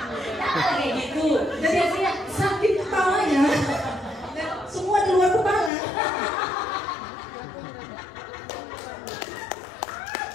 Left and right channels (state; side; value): drops out; right; at 5.7 s